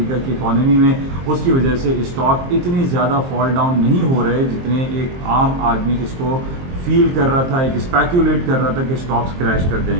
کی اکانومی میں، اس کی وجہ سے اسٹاک اتنی زیادہ فال ڈاؤن نہیں ہو رہے جتنے ایک عام آدمی اس کو فیل کر رہا تھا، ایک اسپیکولیٹ کر رہا تھا کہ اسٹاکس کریش کر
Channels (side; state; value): left; late; 23 ms